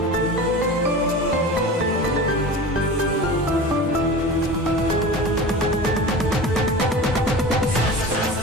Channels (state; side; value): normal; both; correlation 0.33